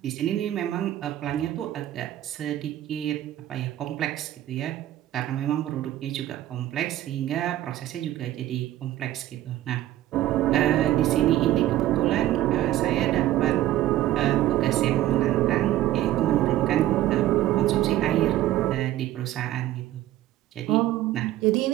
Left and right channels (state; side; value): quieter; left; 14.0 dB